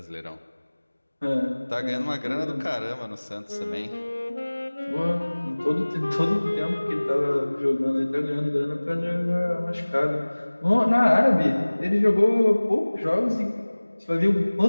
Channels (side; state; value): both; inverted; correlation -1.00